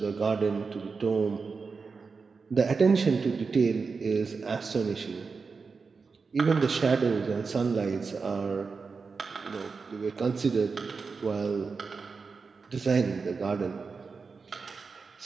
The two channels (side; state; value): left; quieter; 4.8 dB